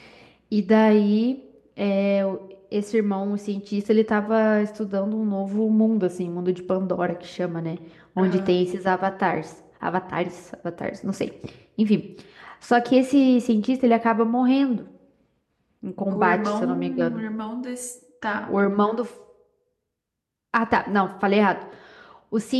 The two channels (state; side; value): identical; both; correlation 1.00